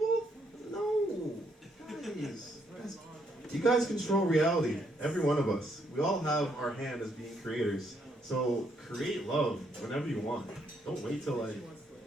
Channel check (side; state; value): both; normal; correlation 0.73